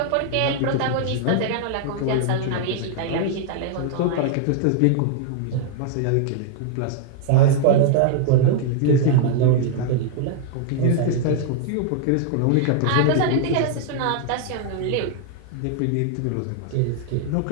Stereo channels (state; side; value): different; both; correlation 0.00